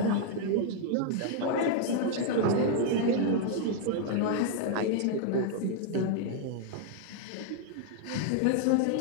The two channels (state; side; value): different; both; correlation 0.00